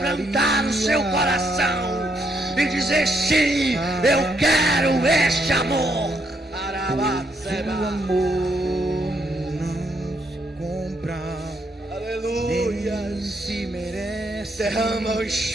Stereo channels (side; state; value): both; normal; correlation 0.75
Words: o seu coração e dizer: sim, eu quero este amor. O amor não se compra. Aleluia. Se merece. Derrama o